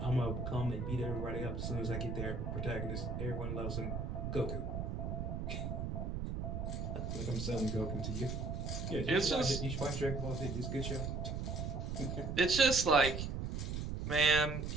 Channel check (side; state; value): right; noise; rumble, 3 dB below the sound